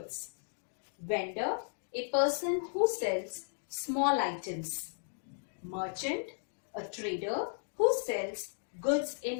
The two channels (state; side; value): silent; right; digital silence